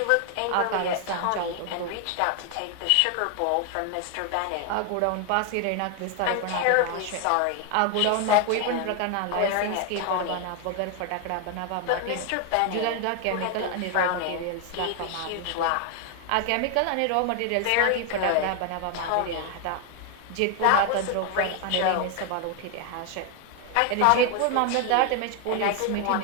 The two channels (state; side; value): different; both; correlation 0.01